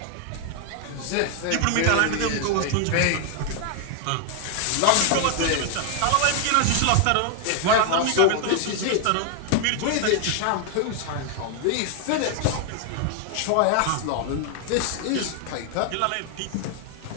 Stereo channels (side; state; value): both; different; correlation 0.00